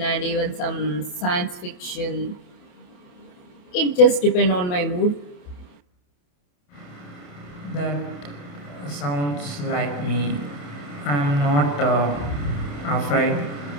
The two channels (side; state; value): right; late; 28 ms